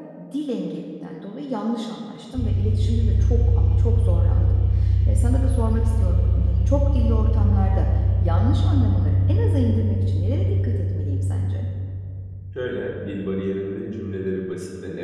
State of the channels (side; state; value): both; identical; correlation 1.00